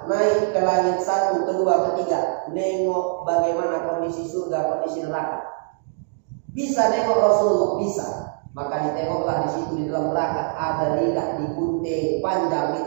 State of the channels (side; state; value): left; silent; digital silence